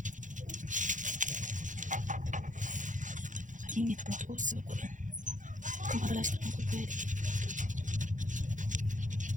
Yine yaprak olsun koyun. Kumaralaştırma koyuyoruz.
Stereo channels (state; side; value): late; left; 0.37 ms